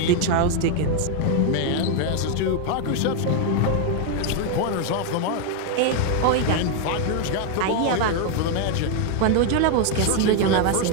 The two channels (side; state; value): both; different; correlation 0.01